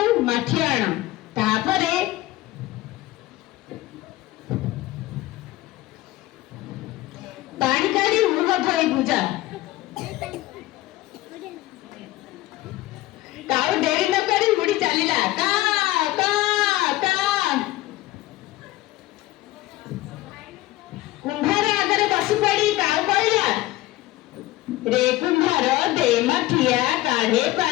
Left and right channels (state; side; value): quieter; right; 17.3 dB